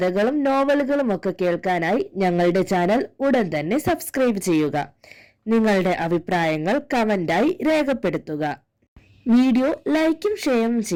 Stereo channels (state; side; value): identical; both; correlation 1.00